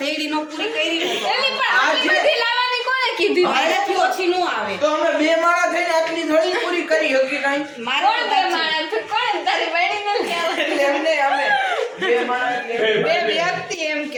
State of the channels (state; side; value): identical; both; correlation 1.00